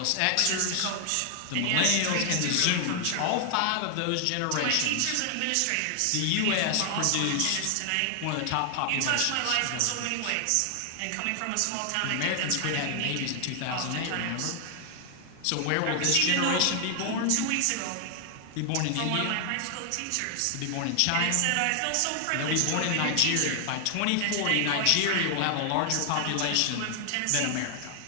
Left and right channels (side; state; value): both; different; correlation 0.00